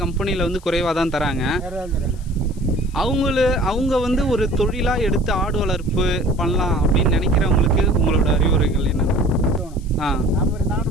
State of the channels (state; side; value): noise; left; hiss, 26 dB below the sound